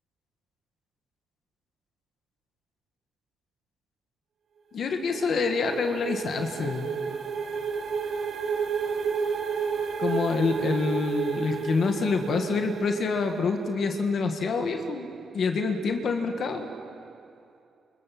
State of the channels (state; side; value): normal; both; correlation 0.76